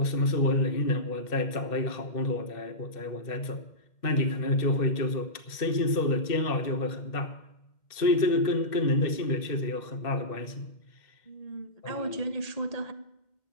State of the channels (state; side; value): late; right; 2.1 ms